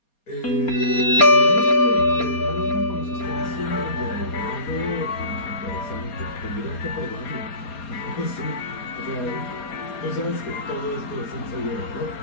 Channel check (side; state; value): right; late; 4.3 ms